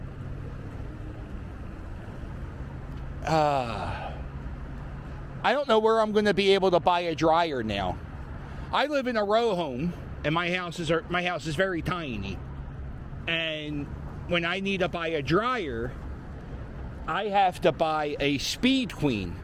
I don't know where I'm going to be able to buy a dryer now. I live in a row home, and my house is very tiny. And when I need to buy a dryer, I have to buy a Speed Queen.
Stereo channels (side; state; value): both; identical; correlation 1.00